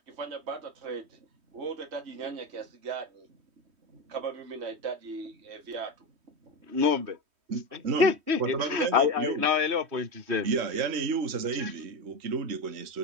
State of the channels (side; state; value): left; late; 3.1 ms